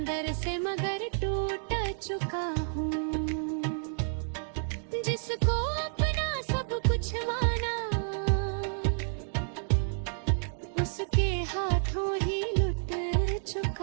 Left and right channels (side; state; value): left; silent; digital silence